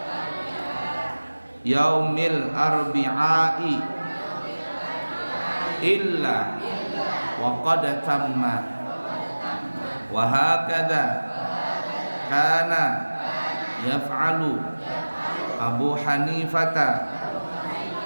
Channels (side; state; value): both; inverted; correlation -1.00